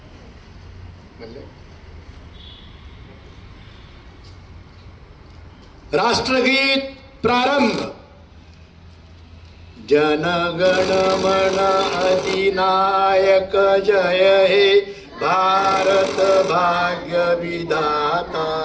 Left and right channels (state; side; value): identical; both; correlation 1.00